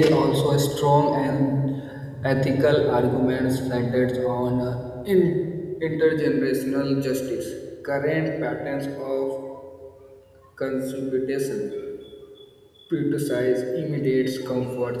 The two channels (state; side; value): identical; both; correlation 1.00